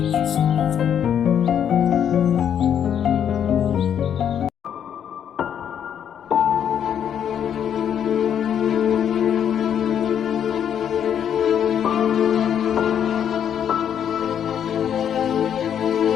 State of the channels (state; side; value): quieter; right; 8.9 dB